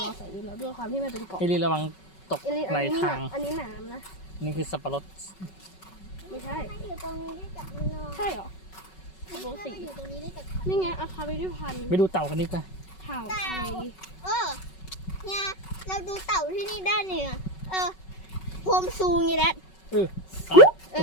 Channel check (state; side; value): late; right; 5.3 ms